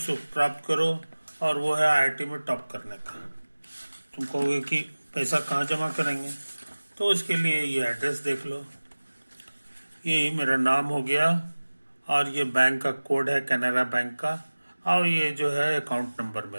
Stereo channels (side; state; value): both; inverted; correlation -1.00